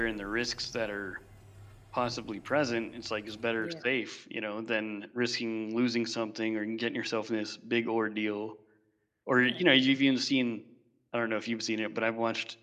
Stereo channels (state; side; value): identical; both; correlation 1.00